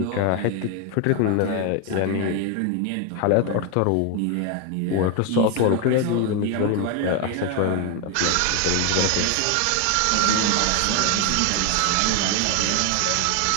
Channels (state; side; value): different; both; correlation 0.01